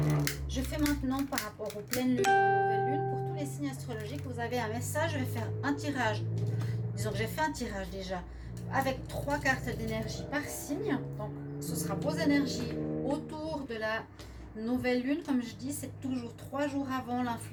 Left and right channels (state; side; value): identical; both; correlation 1.00